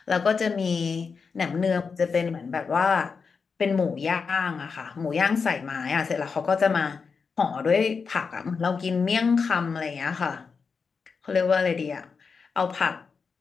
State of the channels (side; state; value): right; quieter; 5.3 dB